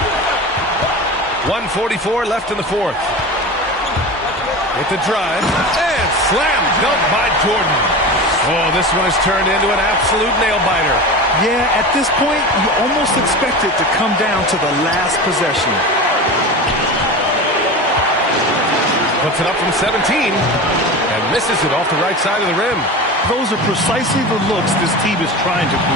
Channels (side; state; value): both; normal; correlation 0.29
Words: 1:44 left in the fourth. With the drive. And slam dunk by Jordan. Oh, this one has turned into an absolute nail-biter. Yeah, at this point, you almost expect it to come down to the last possession. Puts it up from 17 and misses it off the right side of the rim. Those are precisely the looks this team is trying to